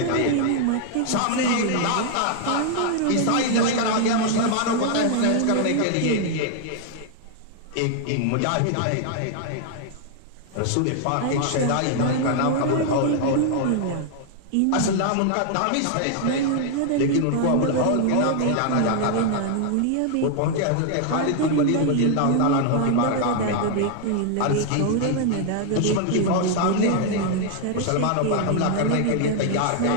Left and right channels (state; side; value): different; both; correlation 0.00